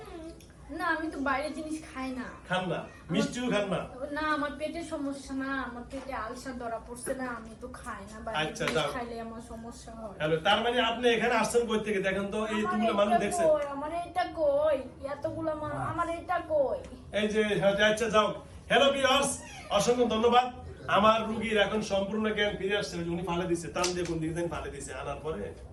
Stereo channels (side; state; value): both; identical; correlation 1.00